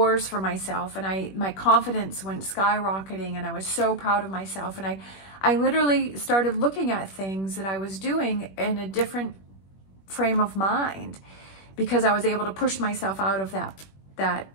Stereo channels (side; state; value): right; late; 21 ms